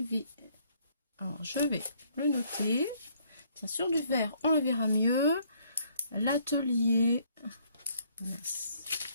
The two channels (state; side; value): inverted; both; correlation -0.65